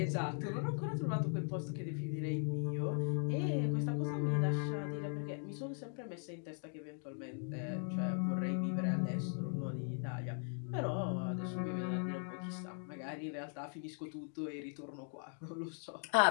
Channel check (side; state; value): right; silent; 52 dB below the other